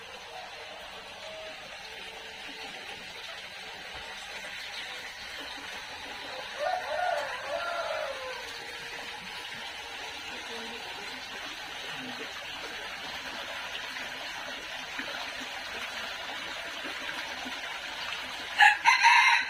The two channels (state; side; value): identical; both; correlation 1.00